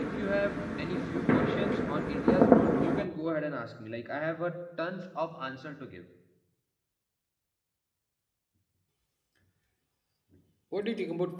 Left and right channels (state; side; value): identical; both; correlation 1.00